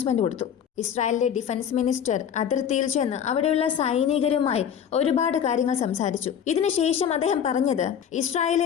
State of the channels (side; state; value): right; quieter; 8.5 dB